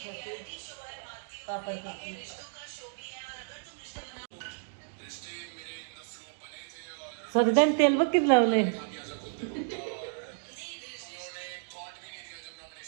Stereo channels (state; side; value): silent; left; digital silence